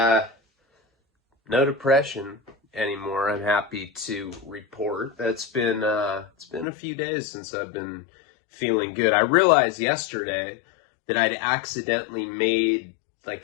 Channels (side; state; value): right; drops out; at 6.7 s